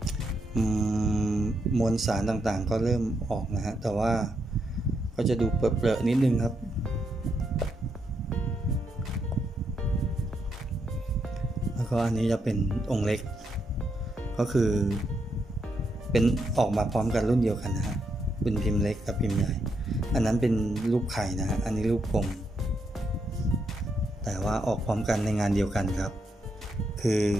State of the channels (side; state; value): both; normal; correlation 0.80